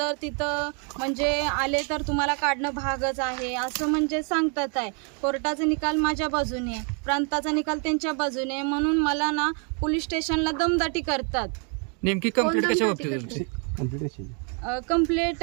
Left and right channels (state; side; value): quieter; left; 38.7 dB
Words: तिथं म्हणजे आले तर तुम्हाला काढणं भागच आहे असं म्हणजे सांगतात आहे. कोर्टाचा निकाल माझ्या बाजूने आहे, प्रांताचा निकाल त्यांच्या बाजूने आहे. म्हणून मला ना पोलीस स्टेशनला दमदाटी करतात. नेमकी कंप्लेंट कशा बाबतीत तुमची?